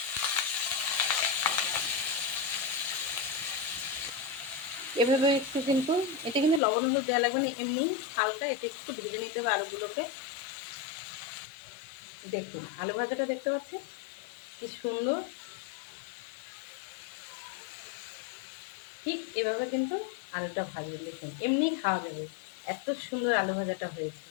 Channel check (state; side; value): drops out; right; at 6.6 s